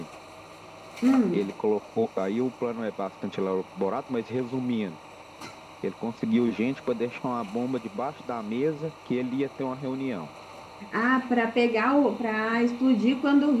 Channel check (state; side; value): identical; both; correlation 1.00